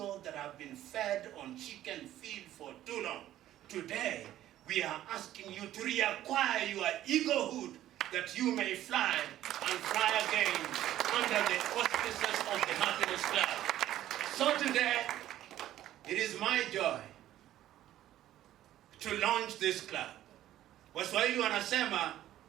that have been fed on chicken feed for too long. Today, we are asking you to reacquire your eaglehood that you may fly and fly again under the auspices of the Happiness Club. So today, it is my joy to launch this club. Waswahili wanasema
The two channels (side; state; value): left; quieter; 13.1 dB